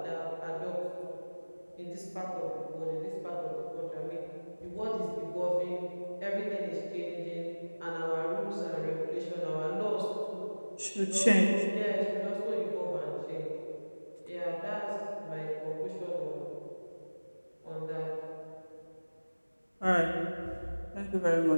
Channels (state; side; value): inverted; both; correlation -1.00